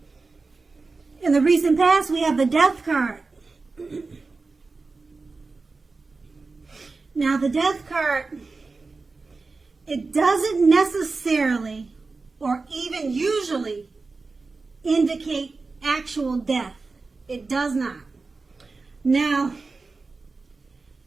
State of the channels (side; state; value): left; quieter; 3.9 dB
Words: in the recent past we have the Death card. Now the Death card, it doesn't necessarily or even usually indicate actual death. It does not. Now,